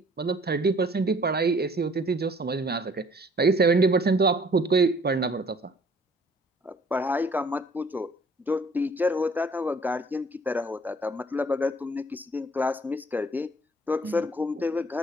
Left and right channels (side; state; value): both; normal; correlation 0.56